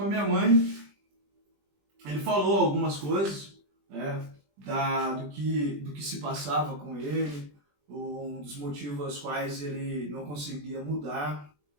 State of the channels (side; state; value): left; late; 20 ms